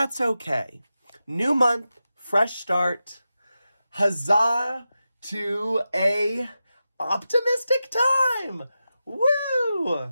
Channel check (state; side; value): inverted; both; correlation -0.91